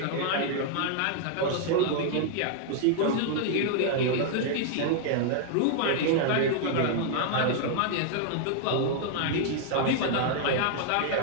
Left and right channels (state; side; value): different; both; correlation 0.00